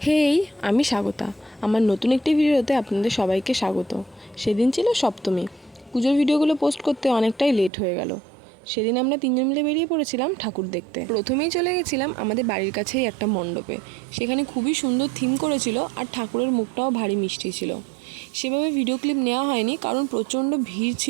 হেই, আমি স্বাগতা। আমার নতুন একটি ভিডিওতে আপনাদের সবাইকে স্বাগত। সেদিন ছিল সপ্তমী। পুজোর ভিডিওগুলো পোস্ট করতে অনেকটাই লেট হয়ে গেল। সেদিন আমরা তিনজন মিলে বেরিয়ে পড়েছিলাম ঠাকুর দেখতে। প্রথমেই চলে গেছিলাম আমাদের বাড়ির কাছেই একটা মণ্ডপে। সেখানে খুবই সুন্দর থিম করেছিল আর ঠাকুরের মুখটাও ভারী মিষ্টি ছিল। সেভাবে ভিডিও ক্লিপ নেওয়া হয়নি কারণ প্রচণ্ড ভিড়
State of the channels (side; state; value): left; drops out; at 7.7 s